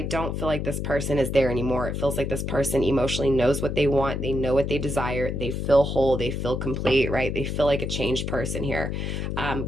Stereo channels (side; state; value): left; noise; hum, 2 dB below the sound